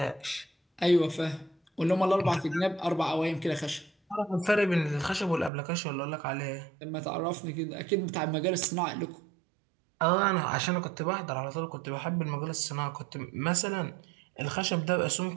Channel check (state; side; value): drops out; left; at 5.5 s